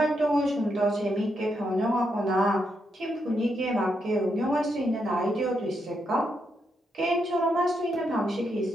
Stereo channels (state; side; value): normal; both; correlation 0.80